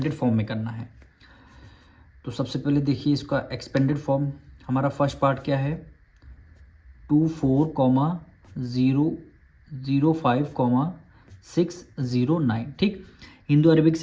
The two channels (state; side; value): identical; both; correlation 1.00